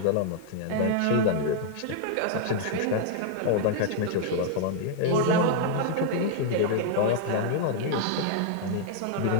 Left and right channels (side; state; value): both; different; correlation 0.00